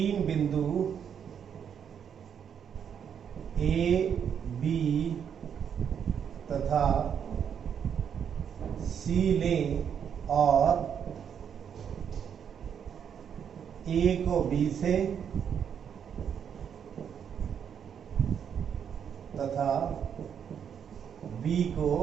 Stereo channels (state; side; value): quieter; left; 8.0 dB